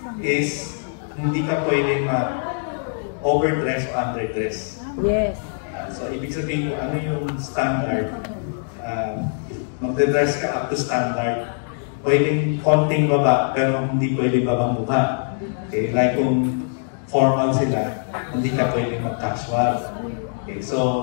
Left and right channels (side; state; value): right; silent; digital silence